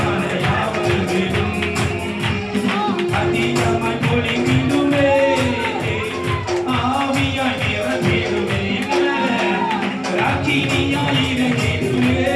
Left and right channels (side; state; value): both; identical; correlation 1.00